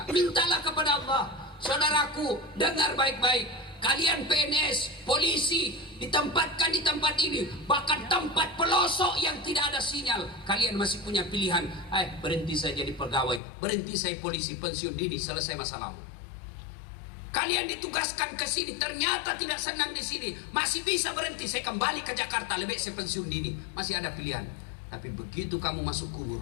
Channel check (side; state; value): right; drops out; at 13.4 s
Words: Mintalah kepada Allah. Saudaraku, dengar baik-baik. Kalian PNS, polisi, ditempatkan di tempat ini, bahkan tempat pelosok yang tidak ada sinyal. Kalian masih punya pilihan. Berhenti saya jadi pegawai, berhenti saya polisi, pensiun dini, selesai masalahmu. Kalian ditugaskan ke sini, ternyata tidak senang di sini, masih bisa berhenti, saya kembali ke Jakarta, lebih saya pensiun dini. Masih ada pilihan. Tapi begitu kamu masuk